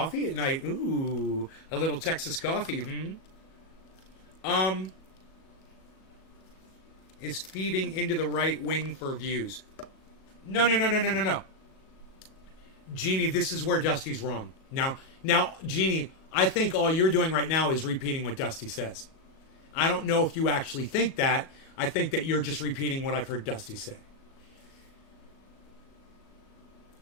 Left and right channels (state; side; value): late; right; 37 ms